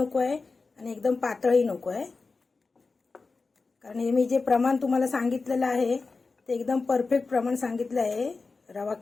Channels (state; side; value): quieter; right; 4.1 dB